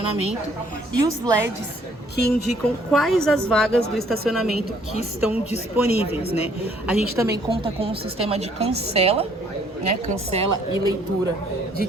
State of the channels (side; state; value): both; normal; correlation 0.63